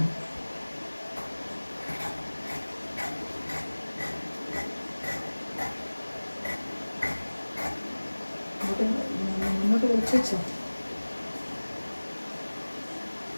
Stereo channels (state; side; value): inverted; both; correlation -1.00